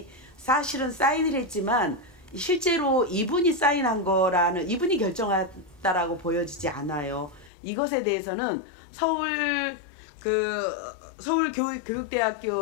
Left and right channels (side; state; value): right; drops out; at 7.5 s